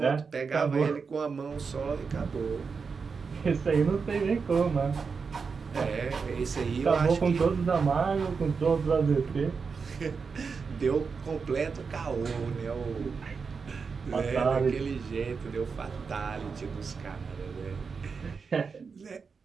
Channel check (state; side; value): quieter; left; 5.3 dB